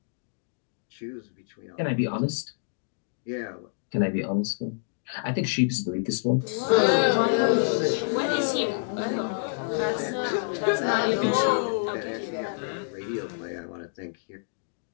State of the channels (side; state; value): right; silent; digital silence